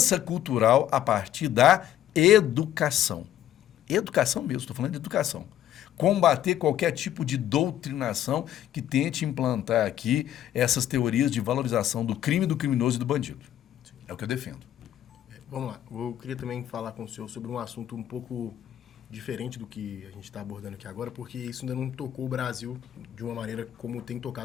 cultural a partir da educação. Educação mesmo, estou falando de educação. Combater qualquer tipo de doutrinação que tente implantar aqui essas teorias de valorização do crime, do criminoso e do bandido. É o que eu defendo. Vamos lá. Eu queria também falar com o senhor sobre um assunto um pouco diferente do que a gente está abordando aqui agora, porque isso ainda não tocou o Brasil de uma maneira como tem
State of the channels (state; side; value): quieter; right; 11.7 dB